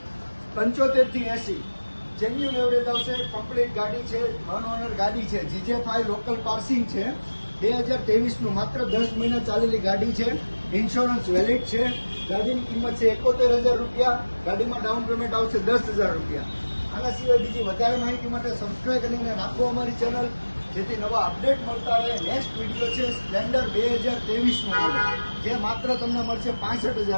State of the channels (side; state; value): both; inverted; correlation -1.00